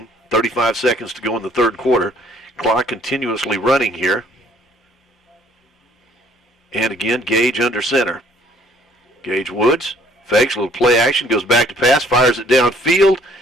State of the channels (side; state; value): both; normal; correlation 0.59